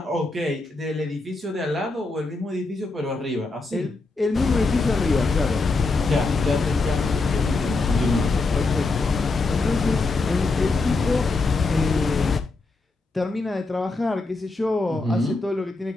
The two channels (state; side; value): quieter; right; 3.5 dB